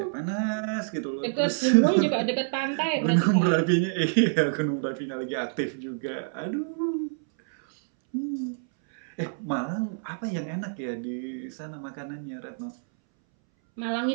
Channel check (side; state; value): left; silent; 60 dB below the other